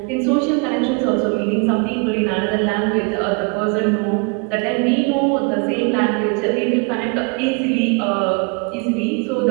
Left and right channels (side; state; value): left; quieter; 32.3 dB